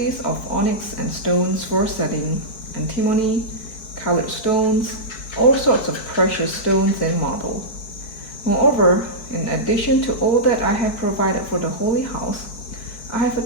of onyx and stones for setting, antimony, colored stones, all sorts of precious stones and marble. Moreover, in addition to all that I have provided for the holy house, I have a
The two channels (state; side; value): late; right; 4.6 ms